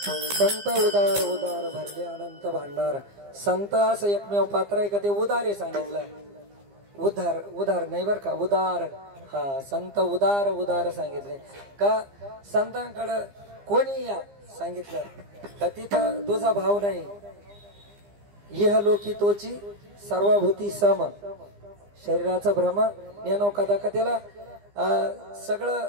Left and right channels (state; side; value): late; left; 15 ms